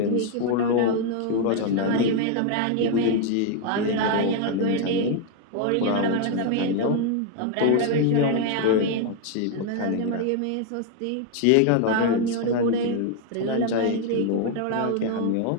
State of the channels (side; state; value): both; different; correlation 0.00